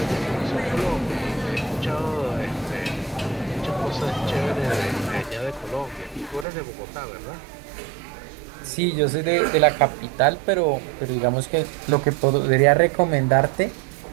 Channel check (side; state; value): left; drops out; at 6.5 s